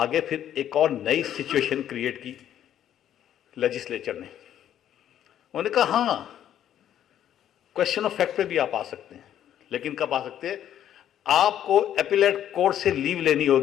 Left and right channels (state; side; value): quieter; right; 10.7 dB